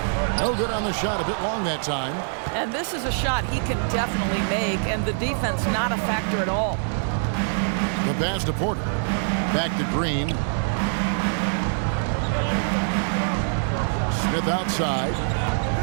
No good on the shot, a bit long that time. And this is a shot he can definitely make, and the defense not a factor at all. The pass to Porter. Back to Green. Smith outside.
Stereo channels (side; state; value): left; silent; 62 dB below the other